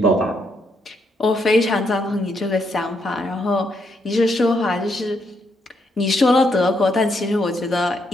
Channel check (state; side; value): normal; both; correlation 0.76